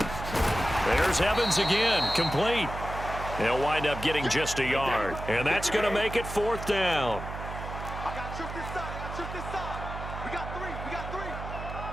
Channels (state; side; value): noise; right; hum, 8 dB below the sound